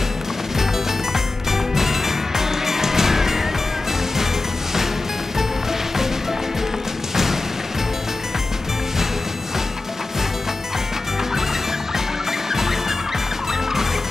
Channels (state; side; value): quieter; right; 3.2 dB